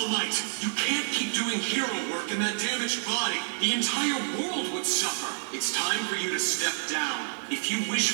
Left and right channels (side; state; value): left; silent; 59 dB below the other